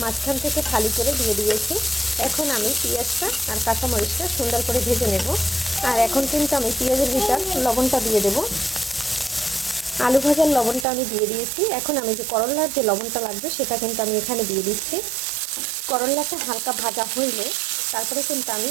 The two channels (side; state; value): left; drops out; at 10.9 s